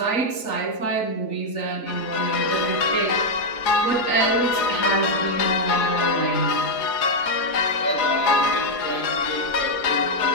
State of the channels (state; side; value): late; right; 4.7 ms